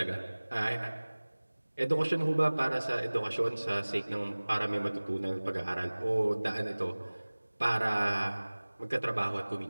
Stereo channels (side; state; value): both; inverted; correlation -1.00